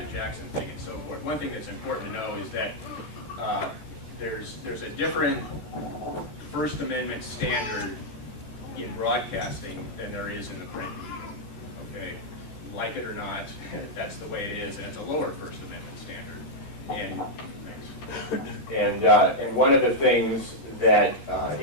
Jackson thing and so forth. One thing that's important to know is that there's a different First Amendment standard in broadcasting than there is in the print medium. Okay, like it or not, that's the way it is, and it's a lower First Amendment standard. And And one of the things that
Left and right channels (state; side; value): late; right; 14 ms